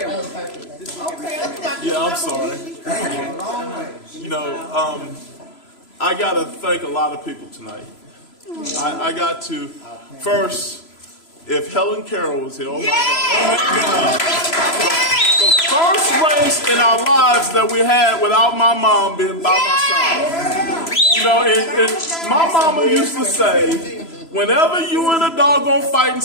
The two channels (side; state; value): right; late; 3.0 ms